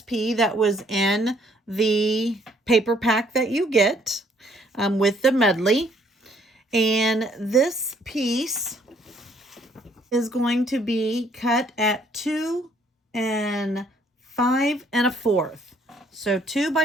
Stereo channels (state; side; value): normal; both; correlation 0.65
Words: that was in the paper pack that you get with the medley. And this piece is going to be cut at 2 5 1/4. So 2